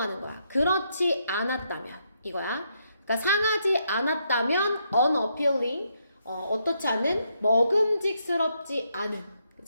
거야. 그렇지 않았다면, 이거야. 그러니까 상하지 않았다면 unappealing, 어떻지 않은, 먹음직스럽지 않은,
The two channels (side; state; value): both; inverted; correlation -0.77